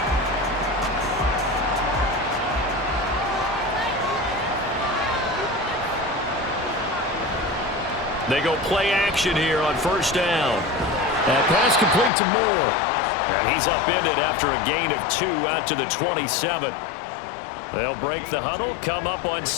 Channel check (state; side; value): drops out; right; at 12.1 s